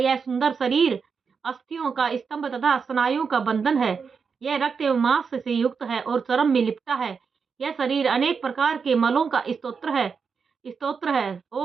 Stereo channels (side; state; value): left; quieter; 5.7 dB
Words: सुंदर शरीर अस्थियों का स्तंभ तथा स्नायुओं का बंधन है। यह रक्त एवं मांस से युक्त है और चर्म में लिपटा है। यह शरीर अनेक प्रकार के मलों का स्तोत्र है